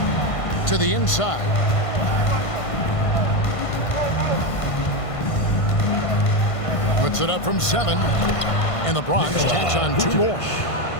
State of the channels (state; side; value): late; right; 1.5 ms